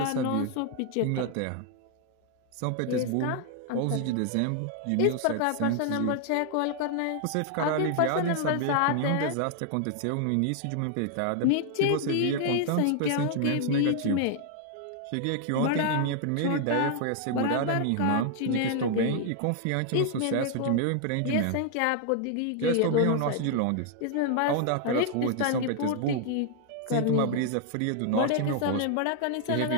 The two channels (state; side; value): different; both; correlation 0.00